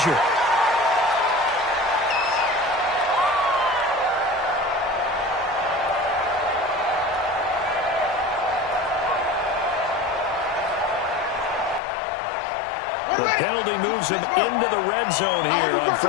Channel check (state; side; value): drops out; right; at 11.8 s